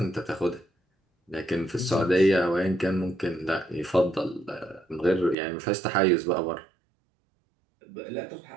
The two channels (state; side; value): drops out; left; at 5.4 s